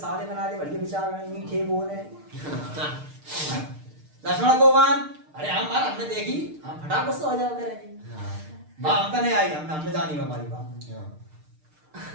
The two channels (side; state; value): left; late; 6.6 ms